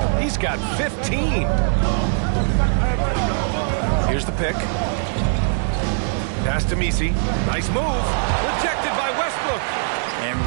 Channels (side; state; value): left; silent; 65 dB below the other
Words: He's got 15. Here's the pick. Pass to MiMi. Nice move. Rejected by Westbrook. And